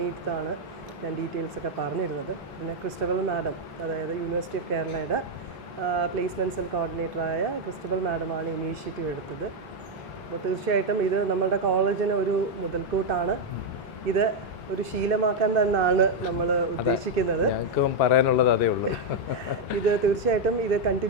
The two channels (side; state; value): both; normal; correlation 0.01